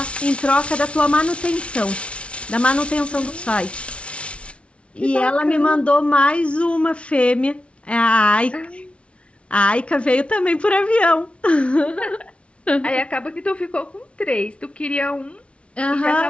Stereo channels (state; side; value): late; right; 0.061 ms